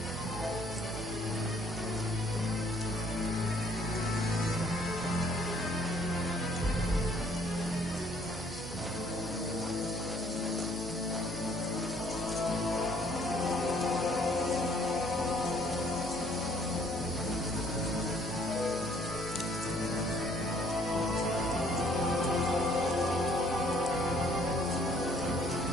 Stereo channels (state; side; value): noise; right; hum, 12 dB below the sound